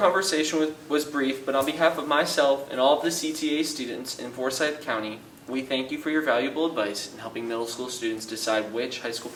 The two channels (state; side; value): identical; both; correlation 1.00